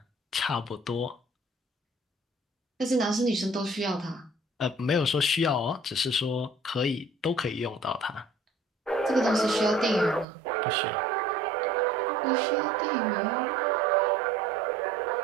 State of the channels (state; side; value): drops out; left; at 10.2 s